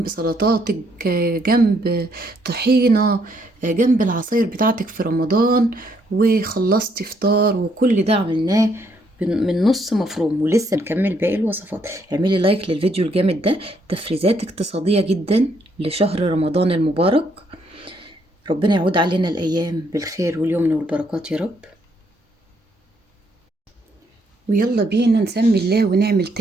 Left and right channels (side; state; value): both; normal; correlation 0.71